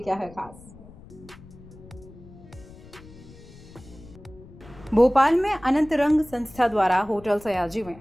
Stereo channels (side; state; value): left; noise; rumble, 20 dB below the sound